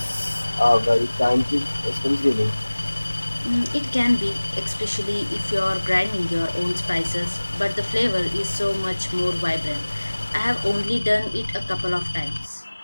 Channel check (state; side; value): inverted; both; correlation -1.00